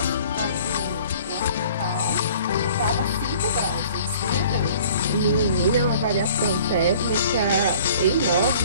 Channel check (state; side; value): inverted; both; correlation -0.51